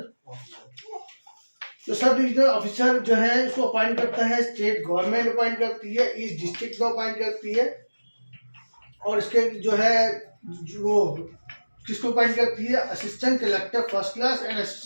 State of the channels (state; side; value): inverted; both; correlation -1.00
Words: officer. तो सब डिविजनल ऑफिसर जो है उसको अपॉइंट करता है स्टेट गवर्नमेंट अपॉइंट करती है, ईस्ट डिस्ट्रिक्ट को अपॉइंट करती है। और इसके जो है वो किसको अपॉइंट करती है, assistant collector first class and